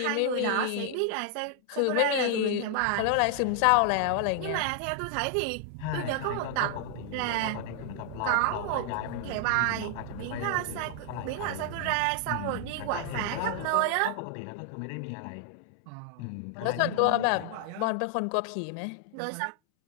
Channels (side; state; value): both; different; correlation 0.00